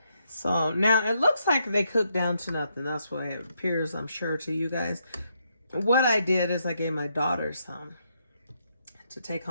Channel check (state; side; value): inverted; both; correlation -0.78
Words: So now it looks like they cooked down to nothing. That's what it appears, I'm sure, to you guys. What I did is I gave my daughter some to take